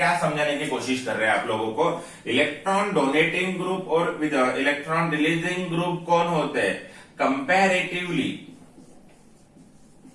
समझाने की कोशिश कर रहे हैं आप लोगों को। इलेक्ट्रॉन डोनेटिंग ग्रुप और विद इलेक्ट्रॉन रिलीजिंग ग्रुप कौन होते हैं, कंपैरेटिवली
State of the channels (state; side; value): identical; both; correlation 1.00